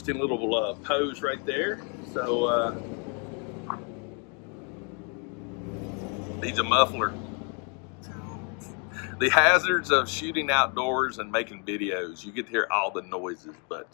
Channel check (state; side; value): quieter; right; 37.5 dB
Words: little pose right there. So needs a muffler. The hazards of shooting outdoors and making videos. You get to hear all the noises,